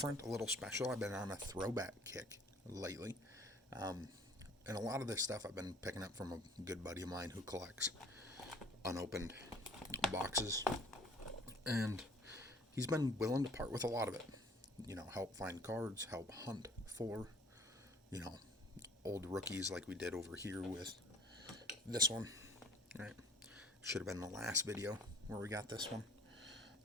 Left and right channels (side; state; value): both; normal; correlation 0.52